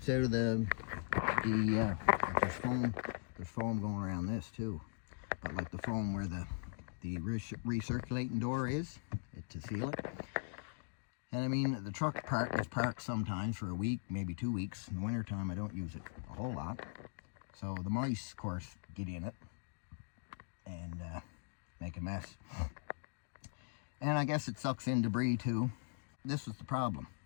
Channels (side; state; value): right; silent; digital silence